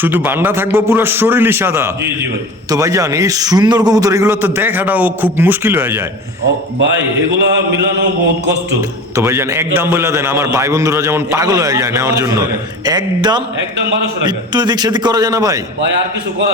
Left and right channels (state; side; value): normal; both; correlation 0.35